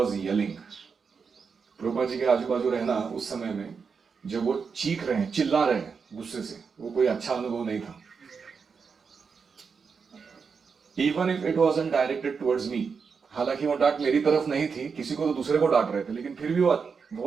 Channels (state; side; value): quieter; left; 5.6 dB